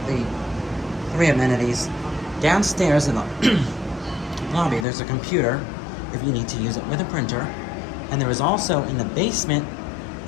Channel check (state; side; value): drops out; right; at 4.9 s